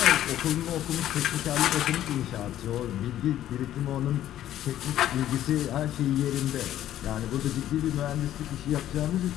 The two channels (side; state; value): right; quieter; 12.3 dB